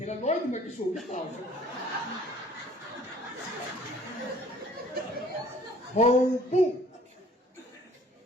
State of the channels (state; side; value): normal; both; correlation 0.54